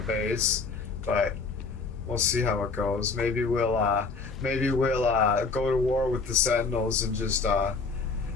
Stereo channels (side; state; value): right; quieter; 4.4 dB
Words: but we'll see how it goes. Maybe we'll go to war with the Sentinels and just,